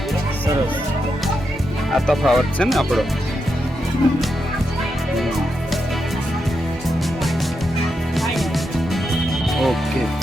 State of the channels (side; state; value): both; normal; correlation 0.85